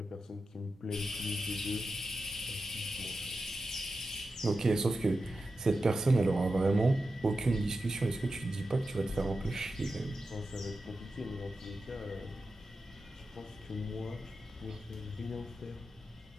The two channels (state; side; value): normal; both; correlation 0.91